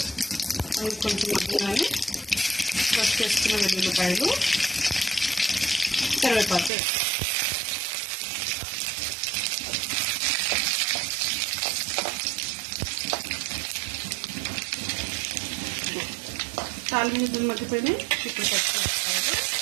అవి కొంచెం మగ్గినాయి. ఫస్ట్ చేసుకున్న వెల్లుల్లిపాయలు, కరివేపాకు తాలింపు గింజలు మగ్గిపోయినాయి. ఇప్పుడు పచ్చిమిరపకాయలు,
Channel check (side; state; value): left; drops out; at 6.7 s